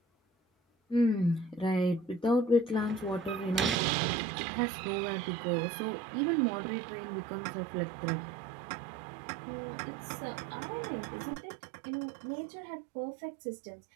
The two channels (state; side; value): drops out; left; at 3.8 s